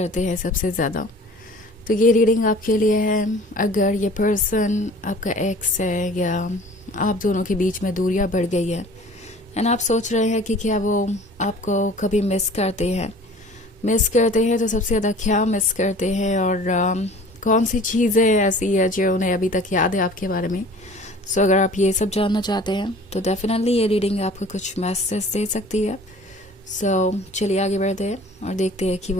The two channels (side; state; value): both; normal; correlation 0.46